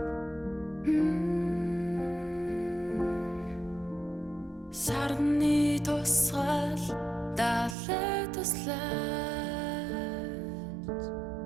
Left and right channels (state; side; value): drops out; left; at 7.8 s